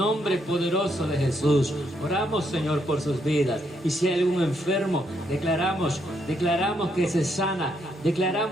poderoso de Jesús. Oramos, Señor, por sus vidas, y si hay algún enfermo, declaramos que se sana,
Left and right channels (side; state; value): both; normal; correlation 0.76